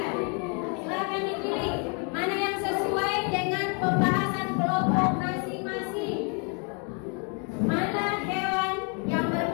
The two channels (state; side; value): quieter; right; 37.3 dB